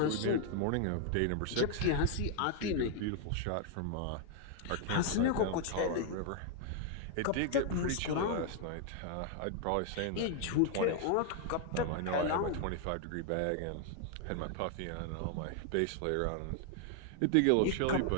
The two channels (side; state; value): both; different; correlation 0.00